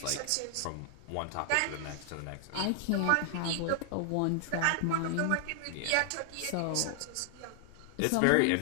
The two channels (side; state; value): both; different; correlation 0.00